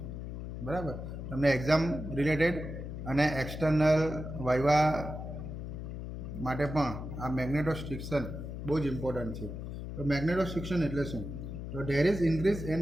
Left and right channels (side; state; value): left; noise; hum, 7 dB below the sound